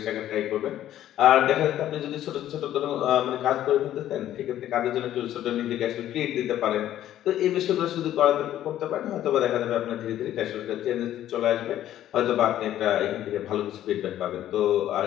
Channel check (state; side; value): quieter; right; 12.3 dB